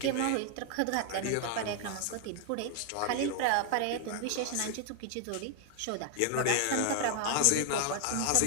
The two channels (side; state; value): both; different; correlation 0.00